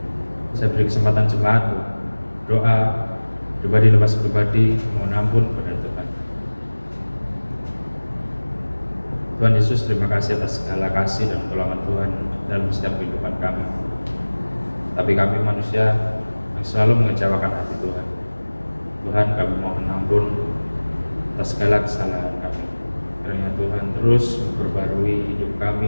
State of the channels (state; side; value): inverted; both; correlation -1.00